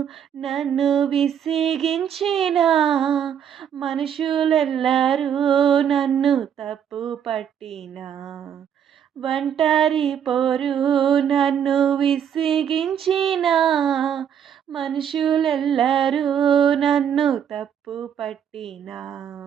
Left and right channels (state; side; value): quieter; left; 8.6 dB